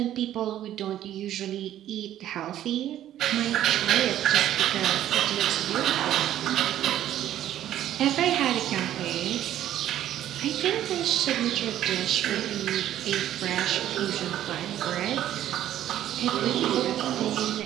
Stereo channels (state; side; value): quieter; left; 12.1 dB